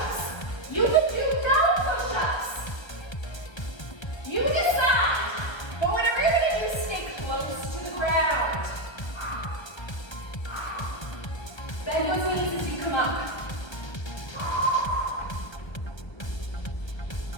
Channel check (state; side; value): late; right; 1.3 ms